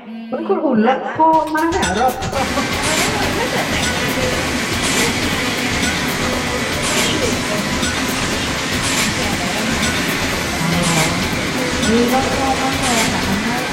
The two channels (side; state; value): both; identical; correlation 1.00